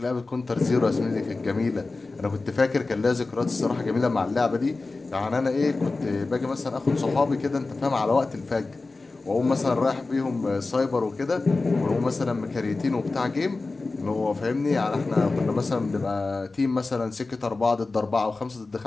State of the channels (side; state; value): right; quieter; 3.6 dB